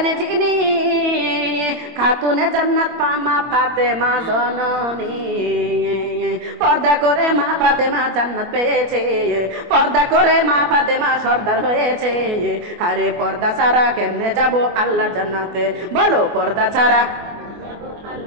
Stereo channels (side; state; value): left; late; 24 ms